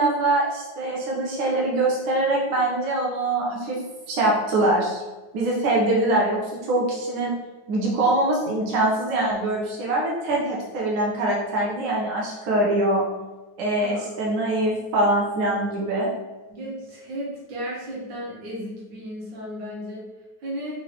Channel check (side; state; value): left; late; 9.4 ms